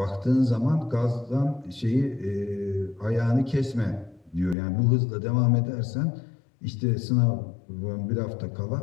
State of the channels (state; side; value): drops out; right; at 4.5 s